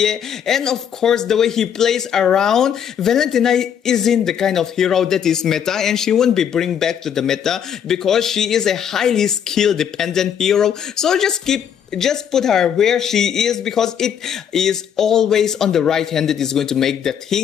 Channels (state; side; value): quieter; right; 8.5 dB